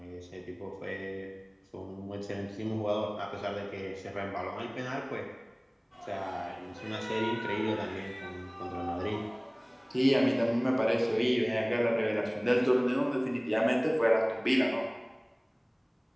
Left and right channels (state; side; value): identical; both; correlation 1.00